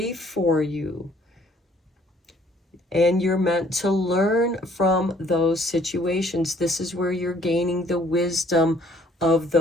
for you. And you're meant to learn from those situations. This is where you're gaining the wisdom of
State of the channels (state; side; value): normal; both; correlation 0.60